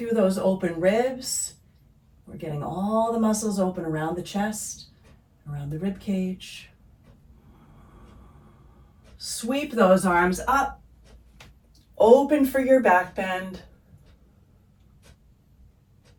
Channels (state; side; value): identical; both; correlation 1.00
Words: those open ribs. We're getting all the muscles open around the chest, around the rib cage. Sweep those arms up. Open for your back bend.